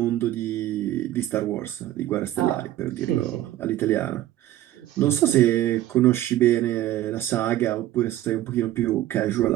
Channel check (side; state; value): left; quieter; 14.0 dB